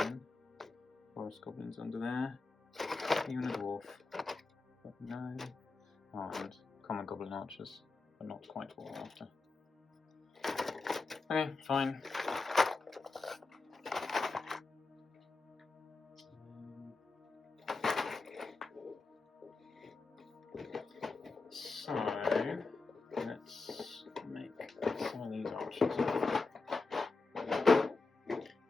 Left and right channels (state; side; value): quieter; right; 3.8 dB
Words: Forest goblins under there. Even a dwarf, but no. Oh, and common goblin archers, but not quite what we're after. Okay, fine. So, let's make some of these archers.